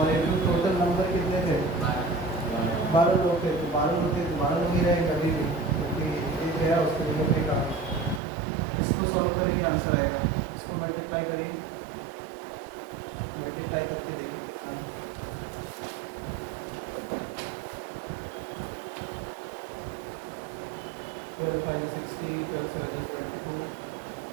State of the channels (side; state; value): left; drops out; at 8.2 s